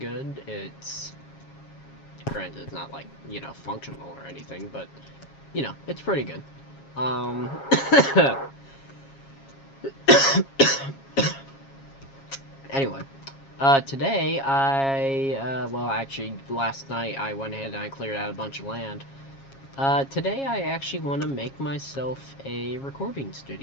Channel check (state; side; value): late; right; 7.3 ms